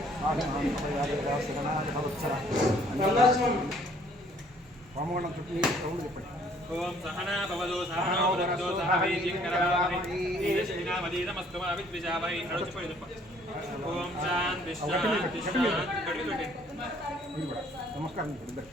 आदिमां प्रयादेवासगणाय भवत्सर హోమగుండం చుట్టూ సౌండ్ చెప్పండి. ఓం సహనా భవదో సహనో భునక్తో సహ వీర్యంకరవావహై తేజస్వినావధీతమస్తు మా విద్విషావహై నడుచుపోయి ఓం శాంతి శాంతి శాంతి. మీరు కూడా నమస్కారం.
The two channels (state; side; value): normal; both; correlation 0.60